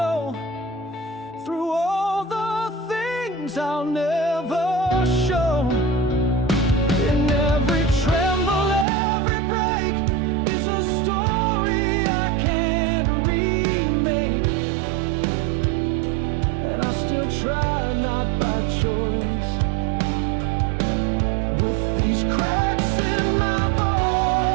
through all the things I'll never show. In every tremble, every break is a story I can't remake. And I still try, not by choice, with these cracks in my voice.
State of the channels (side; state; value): left; drops out; at 8.8 s